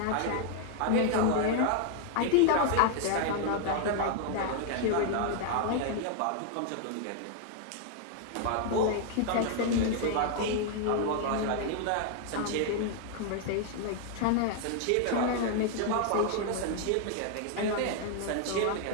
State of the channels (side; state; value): both; different; correlation 0.00